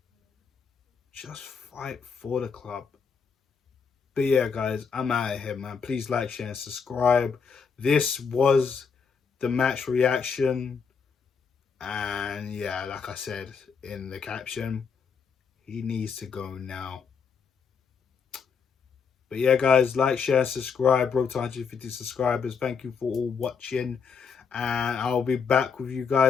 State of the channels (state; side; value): quieter; right; 6.0 dB